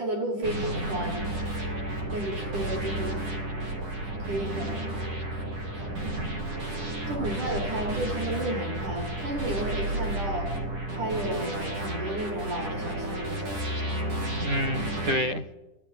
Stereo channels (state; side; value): late; left; 10 ms